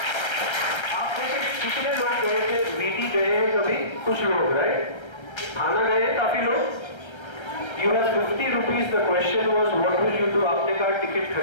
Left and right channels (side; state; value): right; late; 1.3 ms